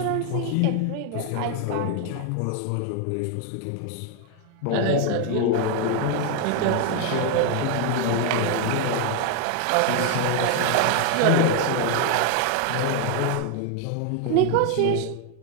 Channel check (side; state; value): both; different; correlation 0.01